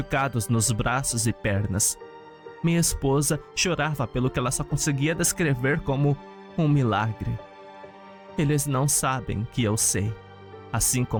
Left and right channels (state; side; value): identical; both; correlation 1.00